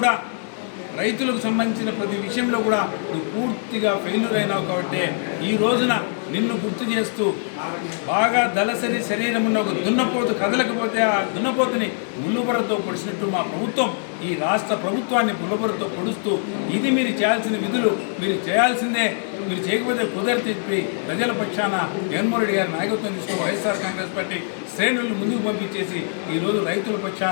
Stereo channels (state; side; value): silent; right; digital silence